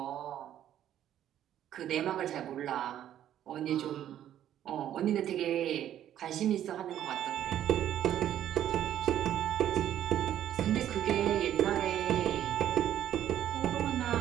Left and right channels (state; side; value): quieter; left; 11.2 dB